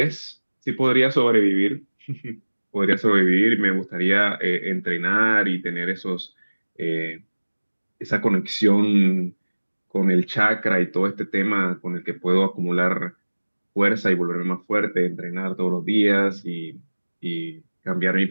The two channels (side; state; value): both; inverted; correlation -1.00